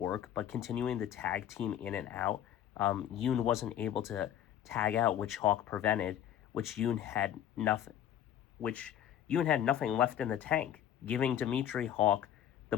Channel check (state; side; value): quieter; right; 10.6 dB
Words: but continuing the tag team in and out, Yoon wasn't able to tag out, which Hawk prevented, which Yoon had nothing, which Yoon had nothing left in the tank, giving Dimitri Hawk